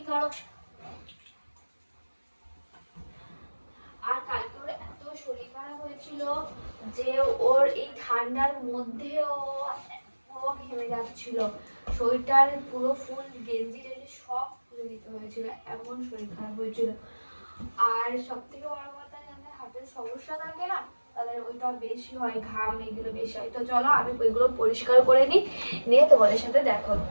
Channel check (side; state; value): both; inverted; correlation -1.00